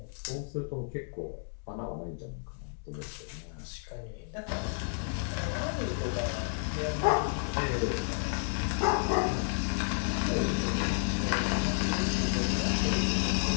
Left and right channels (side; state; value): right; silent; digital silence